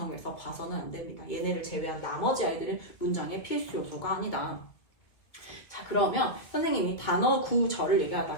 봐서는 안 됩니다. 얘네를 제외한 나머지 아이들은 문장의 필수 요소가 아니다. 자, 그러면 선생님이 단어 구절을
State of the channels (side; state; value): right; late; 1.9 ms